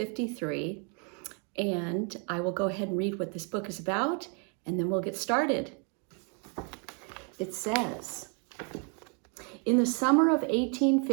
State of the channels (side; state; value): left; quieter; 38.5 dB